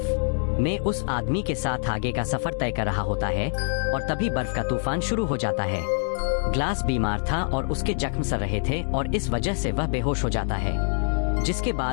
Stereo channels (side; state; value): right; silent; 62 dB below the other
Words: में उस आदमी के साथ आगे का सफर तय कर रहा होता है और तभी बर्फ का तूफान शुरू हो जाता है। ग्लास बीमार था और उसके जख्म सर रहे थे और इस वजह से वह बेहोश हो जाता है, जिसके